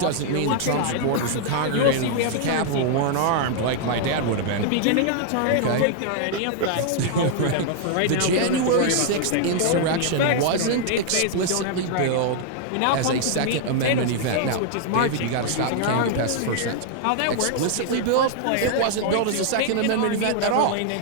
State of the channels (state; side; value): different; both; correlation -0.01